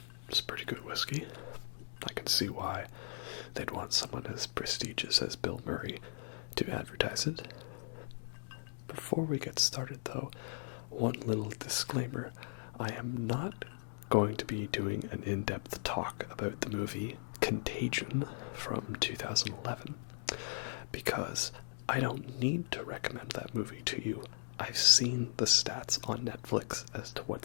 it's pretty good whiskey. I can see why they'd want someone as prestigious as Bill Murray to advertise it. Before we get started though, one little disclaimer. I am not going to be doing an in-depth talk about the movie Contagion from 2011, because I don't need to recommend that movie to you. I've seen the stats on Netflix as to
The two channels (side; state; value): right; silent; digital silence